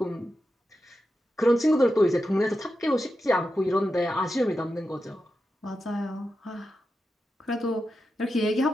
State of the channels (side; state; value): both; normal; correlation 0.89